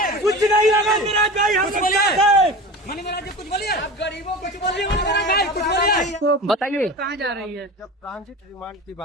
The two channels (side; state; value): both; normal; correlation 0.32